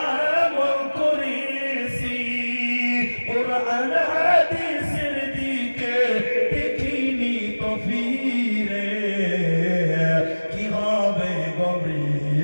আমল করেছি। কোরআন হাদিসের দিকে দেখিনি তো ফিরে, কি হবে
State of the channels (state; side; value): inverted; both; correlation -1.00